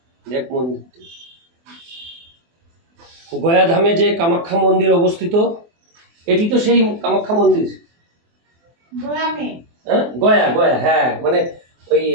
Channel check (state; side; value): late; left; 24 ms